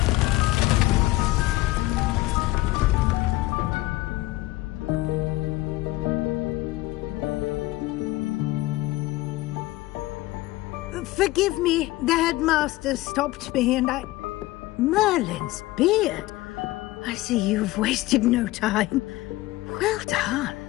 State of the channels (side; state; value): right; quieter; 18.3 dB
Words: Forgive me, the headmaster stopped me and I... Merlin's beard. I see you've wasted no time. Well done.